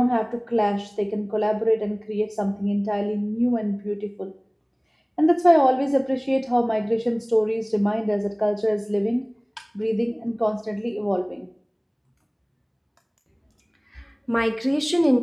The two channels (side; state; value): both; identical; correlation 1.00